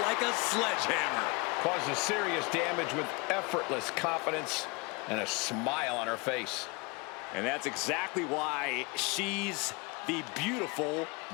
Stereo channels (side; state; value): right; quieter; 28.0 dB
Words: a sledgehammer. Causes serious damage with effortless confidence and a smile on her face. And that's exactly why she's the beautiful